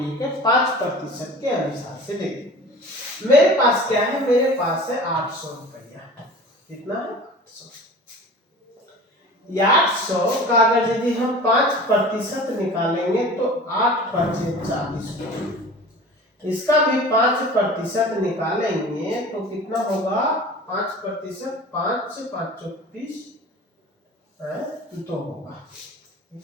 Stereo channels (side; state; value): both; normal; correlation 0.40